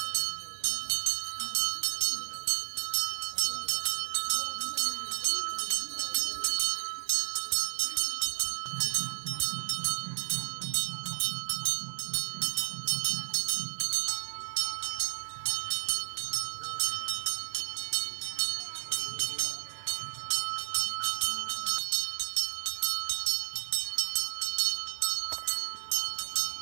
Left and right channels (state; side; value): silent; left; digital silence